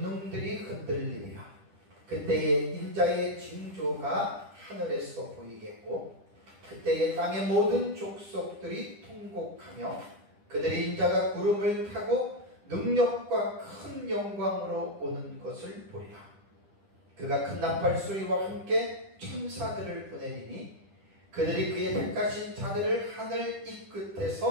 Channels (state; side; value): late; left; 10 ms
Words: 흔들리리라. 그때에 인자의 징조가 하늘에서 보이겠고 그때에 땅의 모든 족속들이 통곡하며 그들의 인자가 구름을 타고 능력과 큰 영광으로 오는 것을 보리라. 그가 큰 나팔 소리와 함께 천사들을 보내리니 그들이 그의 택하신 자들을 하늘 이